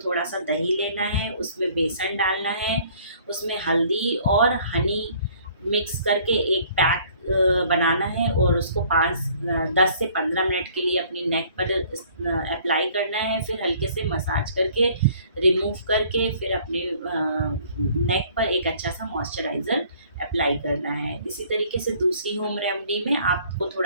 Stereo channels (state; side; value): inverted; both; correlation -0.57